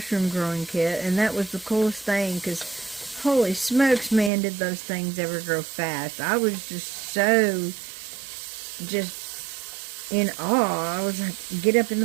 growing kit, and that was the coolest thing, because holy smokes, man, did those things ever grow fast. I was just in awe. I was like, get up in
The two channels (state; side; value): drops out; left; at 4.3 s